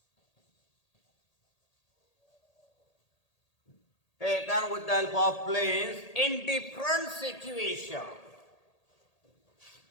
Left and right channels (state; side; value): late; right; 1.8 ms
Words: Taken with the help of planes in different situations.